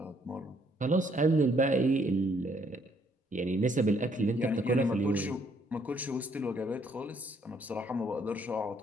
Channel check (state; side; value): normal; both; correlation 0.68